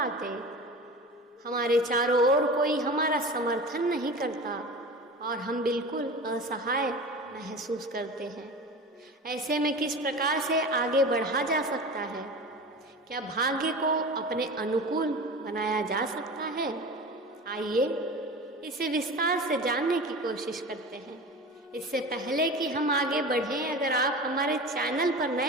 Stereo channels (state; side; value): normal; both; correlation 0.33